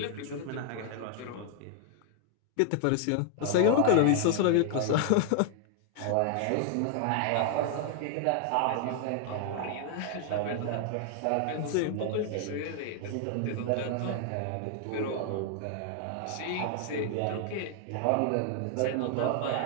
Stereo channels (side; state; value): both; different; correlation 0.00